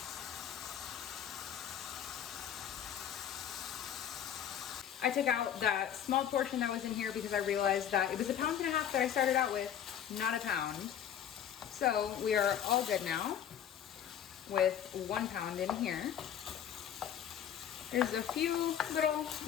I took out that small portion that was in here because I realized that it was 1.5 pounds that I started out with, not a pound. So we are all good now with 1 pound in here. There's a few little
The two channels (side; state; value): right; quieter; 9.6 dB